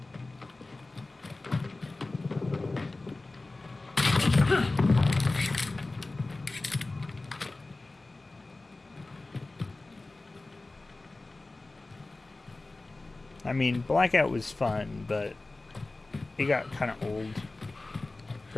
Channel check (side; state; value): right; quieter; 3.2 dB